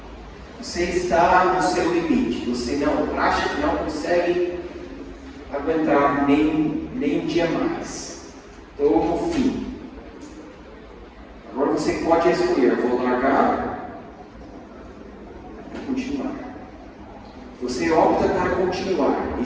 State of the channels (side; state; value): both; identical; correlation 1.00